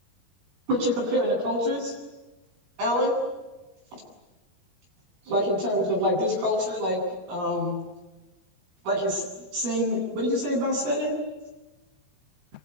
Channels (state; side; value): late; left; 21 ms